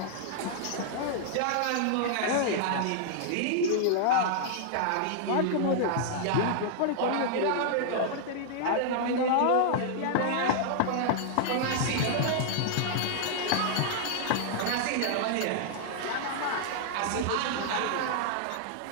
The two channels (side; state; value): both; different; correlation -0.01